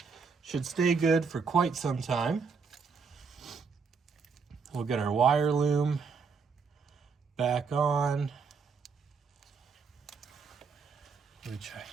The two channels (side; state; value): left; quieter; 5.3 dB